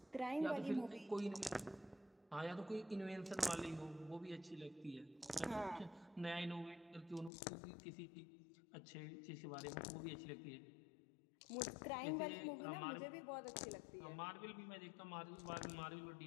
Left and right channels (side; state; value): right; drops out; at 7.3 s